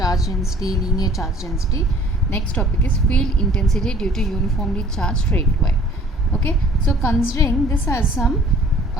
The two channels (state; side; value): normal; both; correlation 0.53